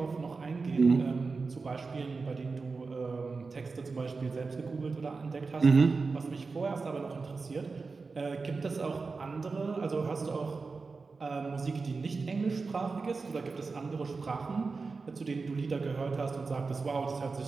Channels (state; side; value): quieter; left; 4.3 dB